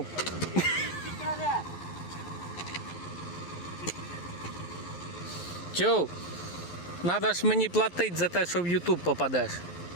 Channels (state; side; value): late; right; 11 ms